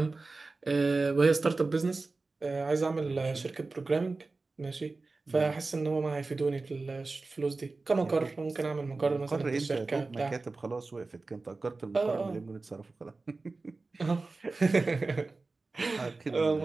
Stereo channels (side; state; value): left; quieter; 3.6 dB